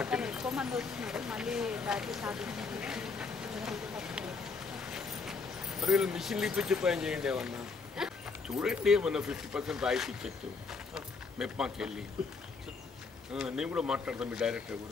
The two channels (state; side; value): quieter; right; 4.5 dB